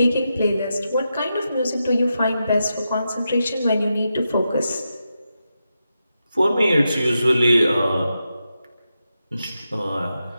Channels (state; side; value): inverted; both; correlation -0.87